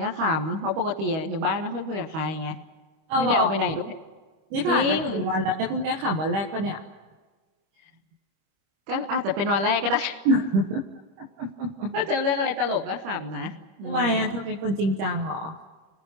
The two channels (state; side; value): late; left; 26 ms